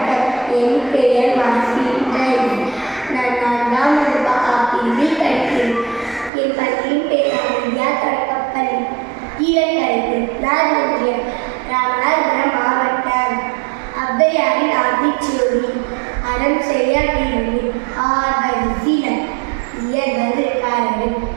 என் பெயர் மாசின். நான் 4ஆம் வகுப்பு ஆப்பிரிவில் படிக்கிறேன். என் பள்ளியின் பெயர் இந்தியா தொடக்கப்பள்ளி, கீழக்கரைக்கு, ஒன்றியம், ராமநாதபுரம் மாவட்டம். ஔவையாரின் ஆத்திச்சூடி. அறம் செய்ய வேண்டும், ஆர்வது சினம், இயல்வது கரடு,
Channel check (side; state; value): left; drops out; at 6.3 s